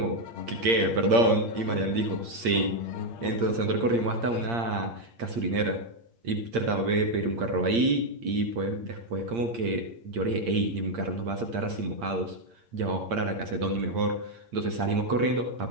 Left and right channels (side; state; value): left; late; 8.6 ms